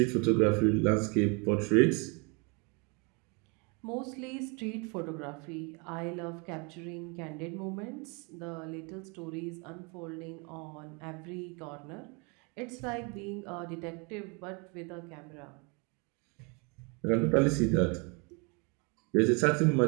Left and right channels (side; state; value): left; quieter; 31.9 dB